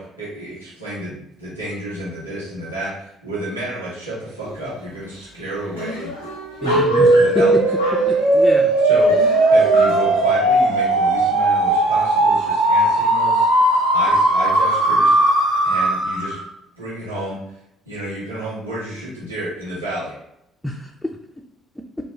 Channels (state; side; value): normal; both; correlation 0.56